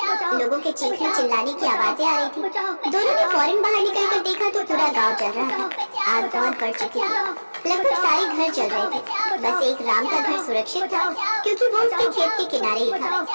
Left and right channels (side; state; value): both; inverted; correlation -1.00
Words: लोगों के चीखने चिल्लाने की आवाजें आ रही थी। दोनों ने फौरन बाहर निकलकर देखा तो पूरा गांव जल रहा था। आग बहुत बढ़ चुकी थी, लगभग सारे घर जल रहे थे। बस एक राम का घर सुरक्षित था, क्योंकि वो उसके खेत के किनारे ही था